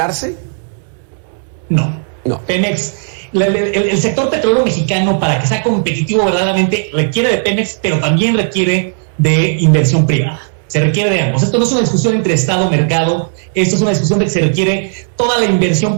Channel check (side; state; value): left; silent; digital silence